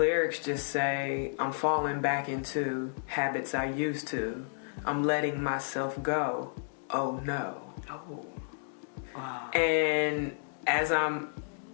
just say, I'm falling back into habits I used to. I'm letting myself go. Oh no. Oh. Wow. And as I'm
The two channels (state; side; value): silent; right; digital silence